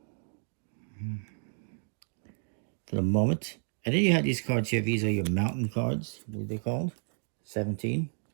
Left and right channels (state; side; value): silent; left; digital silence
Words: for the moment. And then you have these cards here. These are your mountain cards, what are they called? 17.